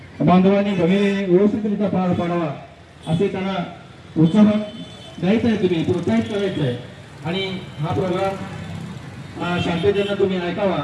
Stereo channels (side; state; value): both; identical; correlation 1.00